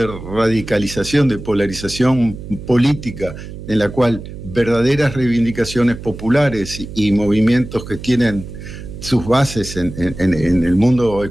radicalización, de polarización política, en la cual verdaderas reivindicaciones populares y movimientos que tienen sus bases en el mundo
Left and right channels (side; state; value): right; noise; hum, 12 dB below the sound